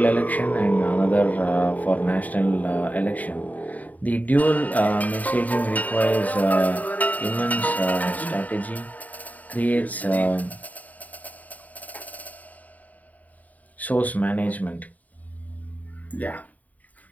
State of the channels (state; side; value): late; right; 0.075 ms